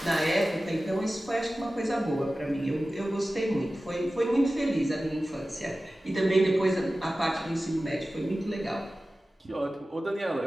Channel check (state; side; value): normal; both; correlation 0.96